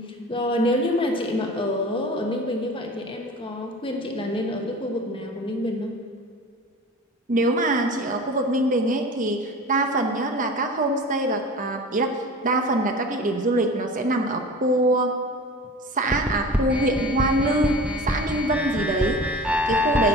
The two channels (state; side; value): normal; both; correlation 0.37